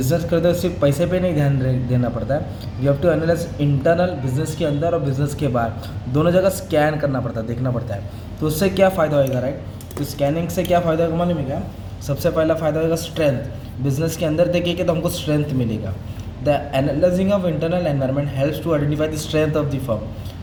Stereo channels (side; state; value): both; identical; correlation 1.00